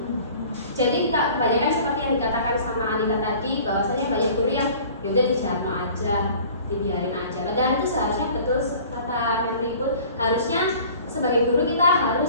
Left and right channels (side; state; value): both; inverted; correlation -0.47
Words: Jadi kebanyakan seperti yang dikatakan sama Anita tadi, bahwasanya banyak guru yang yaudah dijarno aja, dibiarin aja. Padahal itu seharusnya betul kata Mendikbud, harusnya sebagai guru kita